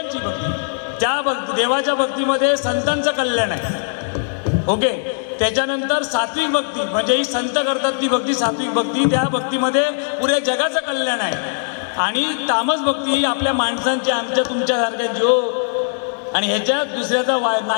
भक्ती. त्या देवाच्या भक्तीमध्ये संतांचं कल्याण आहे. ओके. त्याच्यानंतर सात्विक भक्ती म्हणजे ही संत करतात ती भक्ती, सात्विक भक्ती. त्या भक्तीमध्ये पुऱ्या जगाचं कल्याण आहे. आणि तामस भक्ती ही आपल्या माणसांची, आमच्या तुमच्यासारख्या जो, आणि ह्याच्यात दुसऱ्याचा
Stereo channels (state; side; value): silent; right; digital silence